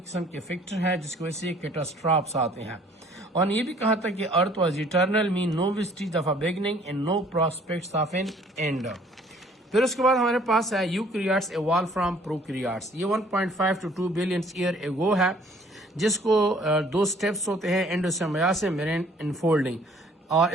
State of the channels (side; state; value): both; normal; correlation 0.58